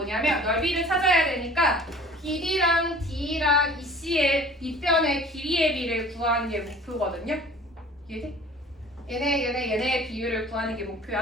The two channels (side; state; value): both; normal; correlation 0.47